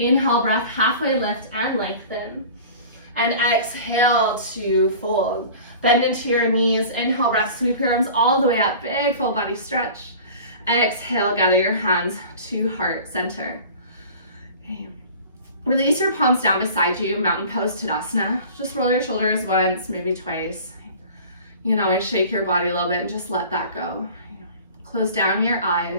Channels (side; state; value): both; inverted; correlation -0.41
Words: breath, halfway lift and lengthen. And exhale to fold. Bend into your knees. Inhale, breath, sweep your arms all the way up. Big full body stretch. Exhale, gather your hands to heart center. Okay. Release your palms down beside you, mountain pose Tadasana. Just roll your shoulders once, maybe twice. You can always shake your body a little bit and just let that go. Close down your